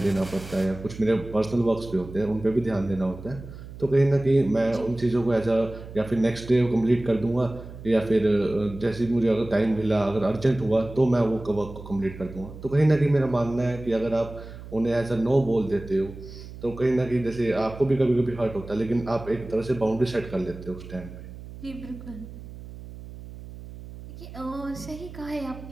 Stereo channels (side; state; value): right; noise; hum, 14 dB below the sound